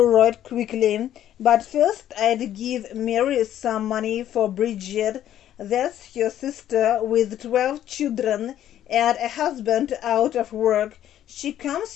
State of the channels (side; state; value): right; quieter; 11.5 dB